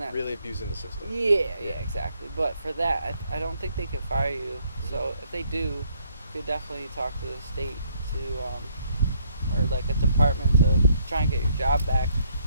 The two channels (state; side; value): inverted; both; correlation -0.68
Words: really abusing the system. Yeah, exactly. But for that, I don't think they could fire you. So if they do, you could definitely talk to the state or a department to try and get your job back.